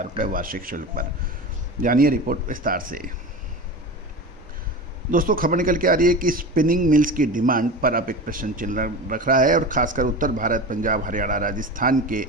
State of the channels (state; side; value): normal; both; correlation 0.29